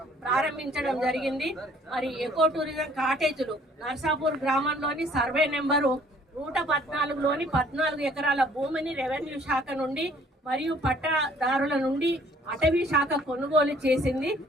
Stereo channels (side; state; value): both; normal; correlation 0.58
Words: ప్రారంభించడం జరిగింది. మరి ఎకో టూరిజం కాటేజీలు నర్సాపూర్ గ్రామంలోని సర్వే నెంబరు 114లోని 14 ఎకరాల భూమిని రెవెన్యూ శాఖ నుండి మరియు పట్టాదారుల నుండి అటవీ శాఖ కొనుగోలు చేసింది.